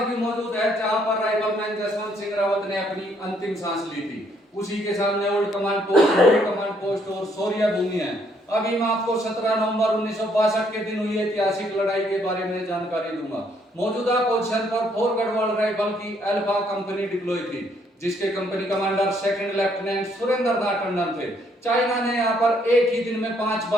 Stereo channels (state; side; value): normal; both; correlation 0.69